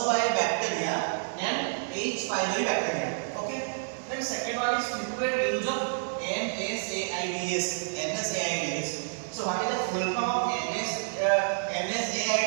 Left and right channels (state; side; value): silent; left; digital silence